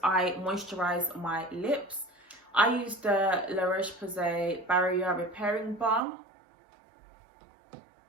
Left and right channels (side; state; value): left; drops out; at 6.0 s